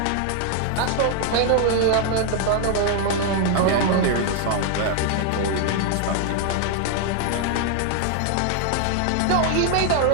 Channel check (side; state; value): both; different; correlation 0.00